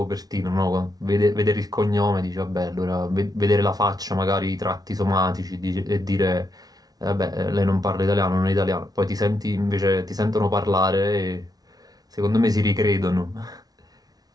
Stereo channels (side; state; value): left; late; 0.19 ms